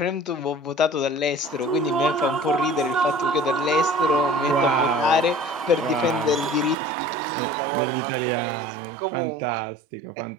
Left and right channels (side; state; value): left; drops out; at 6.8 s